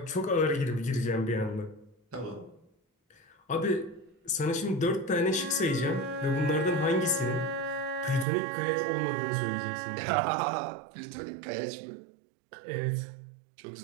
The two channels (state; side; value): drops out; left; at 8.2 s